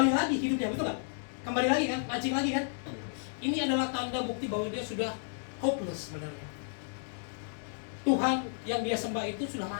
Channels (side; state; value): right; silent; digital silence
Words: lagi hidupnya, betul nggak? Kembali lagi kan, mancing lagi kan? Ini adalah tanda bukti bahwa dia sudah hopeless sebenarnya. Tuhan yang dia sembah itu sudah